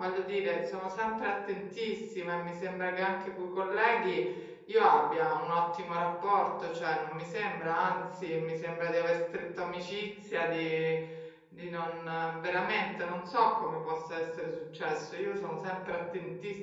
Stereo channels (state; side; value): identical; both; correlation 1.00